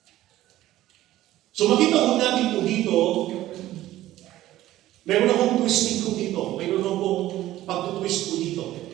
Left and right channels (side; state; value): left; quieter; 14.8 dB